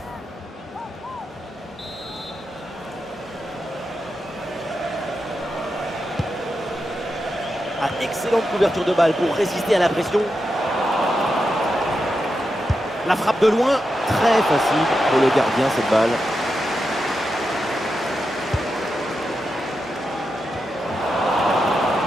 Ah, excellente couverture de balle pour résister à la pression. La frappe de loin, très facile pour le gardien cette balle.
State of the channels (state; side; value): normal; both; correlation 0.88